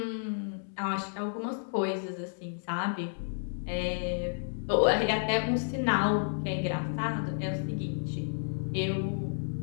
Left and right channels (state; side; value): silent; right; digital silence